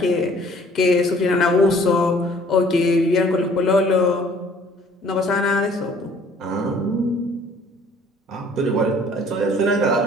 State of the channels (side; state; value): both; normal; correlation 0.56